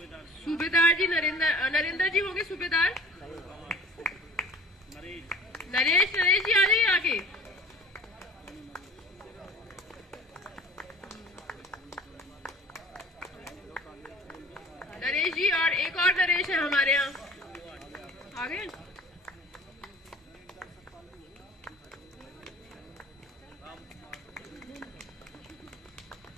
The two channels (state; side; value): normal; both; correlation 0.46